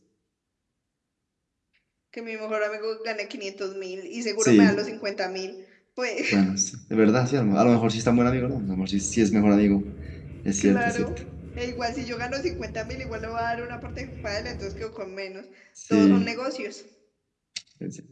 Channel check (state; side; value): identical; both; correlation 1.00